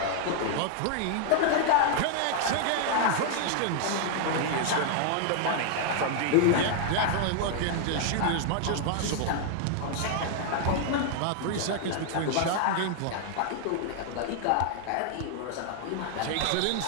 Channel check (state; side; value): different; both; correlation 0.00